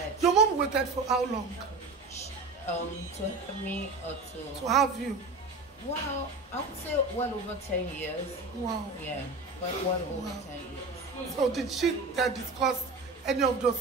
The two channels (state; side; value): quieter; left; 3.5 dB